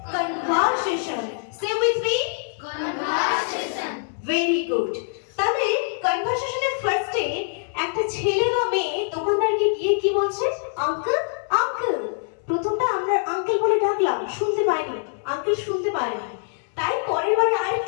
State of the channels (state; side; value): silent; right; 63 dB below the other